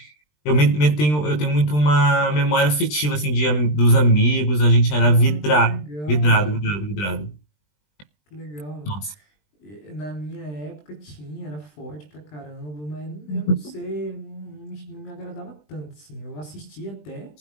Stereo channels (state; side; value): late; right; 20 ms